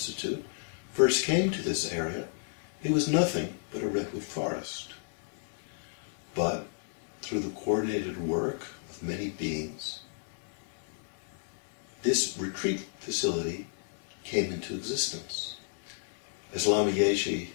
first came to this area, it was nothing but a redwood forest. But through the coordinated work of many beings, this retreat facility came into existence. As Lama Yeshe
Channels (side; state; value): right; silent; 57 dB below the other